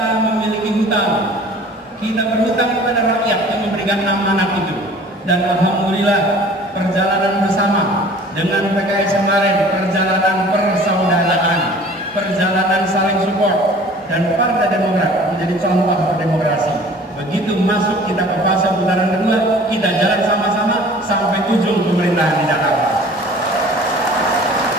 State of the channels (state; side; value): normal; both; correlation 0.48